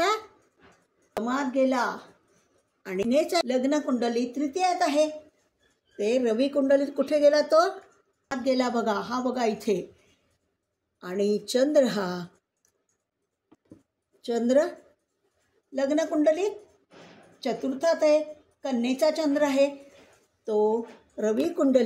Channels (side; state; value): both; identical; correlation 1.00